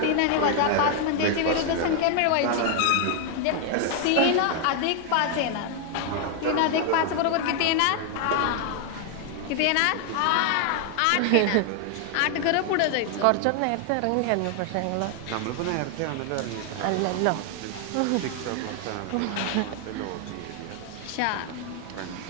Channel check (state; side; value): different; both; correlation 0.00